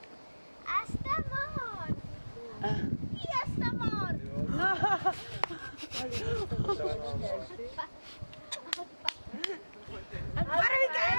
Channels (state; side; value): inverted; both; correlation -1.00